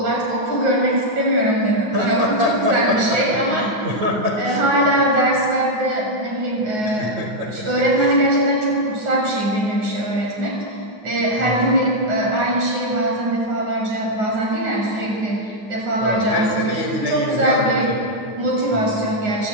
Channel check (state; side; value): late; left; 9.4 ms